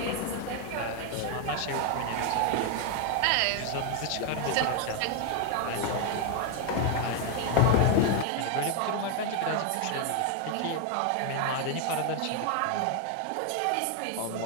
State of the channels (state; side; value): different; both; correlation 0.01